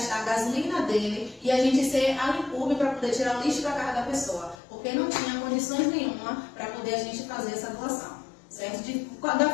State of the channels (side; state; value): right; drops out; at 4.5 s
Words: a gasolina dele e a gente ser a Limpub para poder tirar o lixo da casa da pessoa, porque não tinha condições nenhuma para poder a gente fazer essa doação, certo? Da